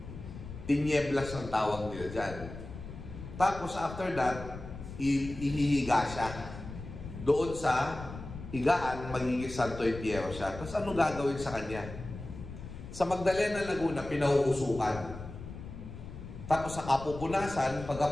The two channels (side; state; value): left; noise; rumble, 11 dB below the sound